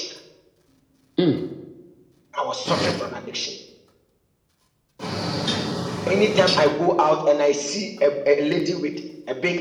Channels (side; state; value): both; identical; correlation 1.00